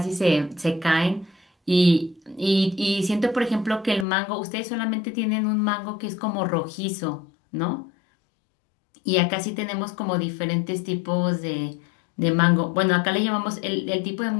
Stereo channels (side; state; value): right; drops out; at 4.0 s